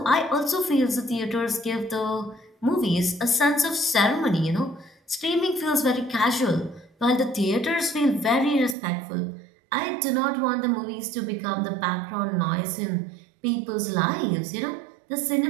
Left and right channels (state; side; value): drops out; left; at 8.8 s